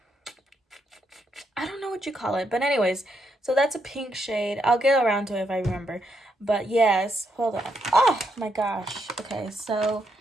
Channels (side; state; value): both; normal; correlation 0.78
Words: I don't know what you call it, but anyways, so that's a pink shade. I'll get around to it if I remember. But yes, hold on. Oh my gosh. Okay, so